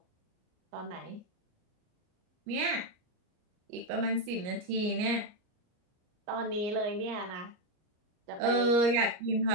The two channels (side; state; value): left; late; 38 ms